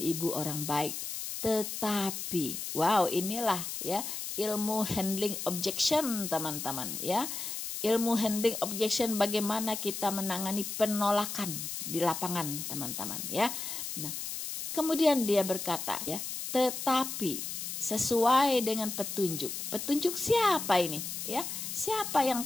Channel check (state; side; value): noise; left; hiss, 5 dB below the sound